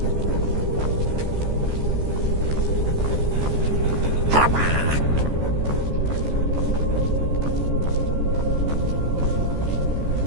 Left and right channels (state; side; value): late; left; 14 ms